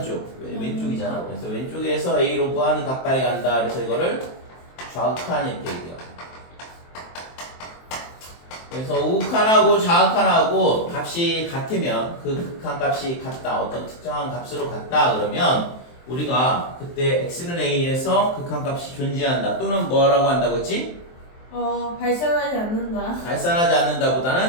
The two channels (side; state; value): right; late; 23 ms